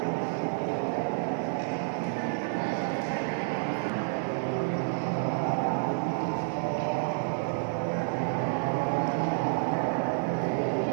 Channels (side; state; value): left; silent; digital silence